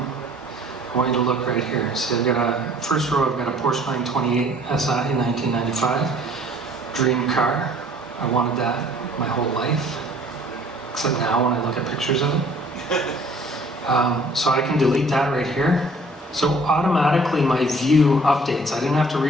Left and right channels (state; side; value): normal; both; correlation 0.55